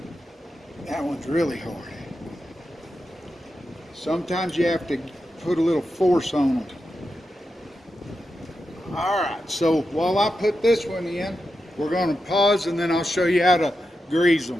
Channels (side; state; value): both; normal; correlation 0.88